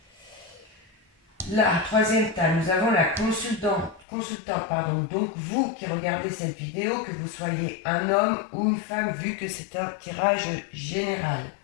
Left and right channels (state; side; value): drops out; right; at 4.0 s